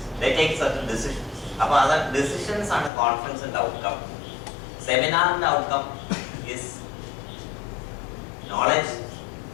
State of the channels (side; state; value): right; drops out; at 2.9 s